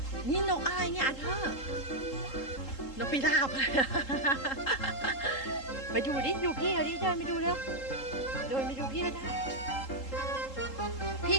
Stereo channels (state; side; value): late; right; 3.8 ms